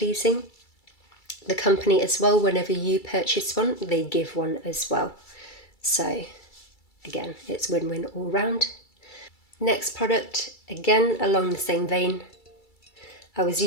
The company as well, whenever you purchase one, they give one as well. So again, it's win-win all round. Next product, again along the same vein. I was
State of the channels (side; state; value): right; late; 2.3 ms